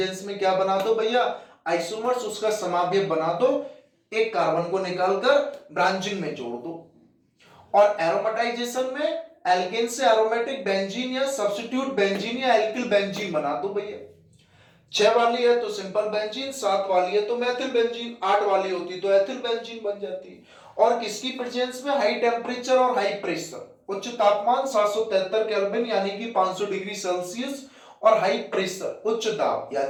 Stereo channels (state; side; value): identical; both; correlation 1.00